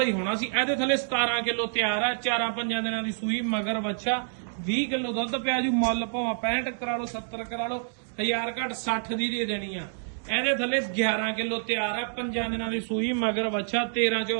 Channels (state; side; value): silent; left; digital silence